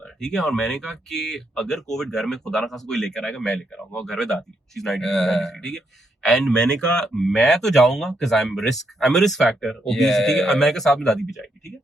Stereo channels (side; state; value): both; normal; correlation 0.78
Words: ठीक है, और मैंने कहा कि अगर कोविड घर में खुदा ना खासा कोई लेकर आएगा, मैं लेकर आऊंगा, और घर में दादी, she's 93, ठीक है, एंड मैंने कहा मैं तो जाऊंगा because I'm a risk factor, obesity, ठीक है, और मैंने कहा साथ में दादी भी जाएगी, ठीक है,